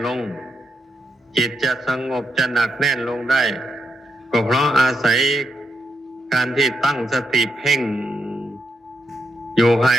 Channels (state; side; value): normal; both; correlation 0.80